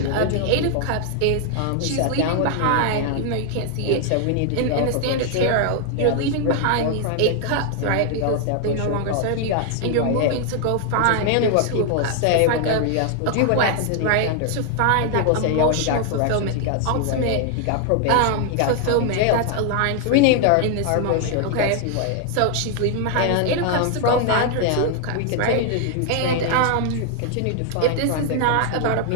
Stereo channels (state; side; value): different; both; correlation 0.00